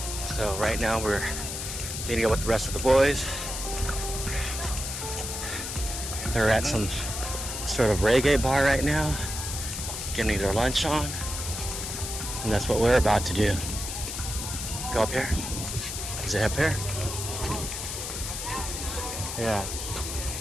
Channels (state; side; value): noise; left; hiss, 5 dB below the sound